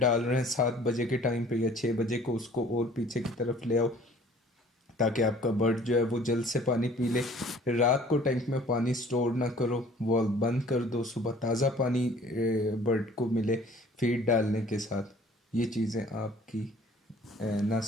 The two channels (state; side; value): normal; both; correlation 0.52